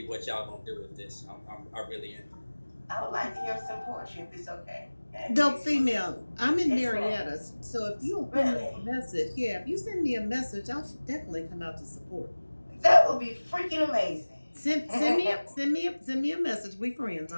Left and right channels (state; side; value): inverted; both; correlation -1.00